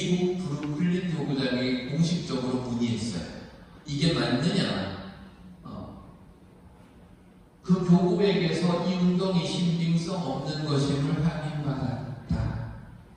브루클린 교구장에 공식적으로 문의했어요. 이게 맞느냐? 그 교구에게서 이 운동이 신빙성 없는 것임을 확인받았다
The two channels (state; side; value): identical; both; correlation 1.00